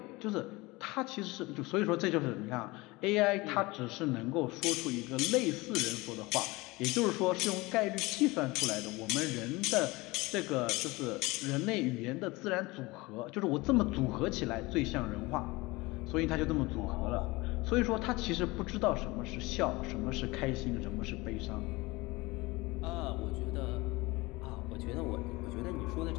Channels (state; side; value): quieter; right; 22.5 dB